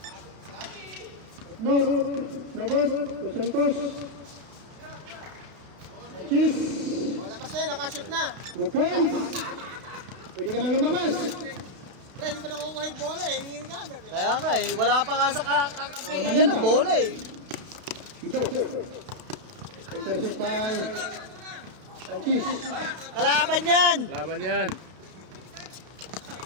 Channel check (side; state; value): left; late; 31 ms